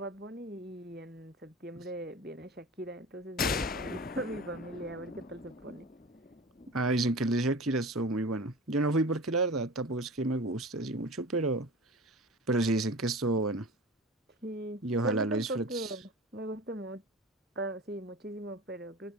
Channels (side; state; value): both; normal; correlation 0.35